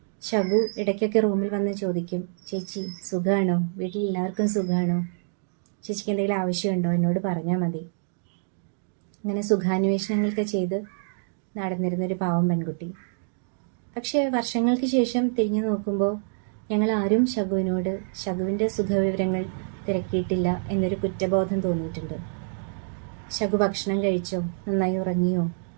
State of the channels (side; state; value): left; silent; digital silence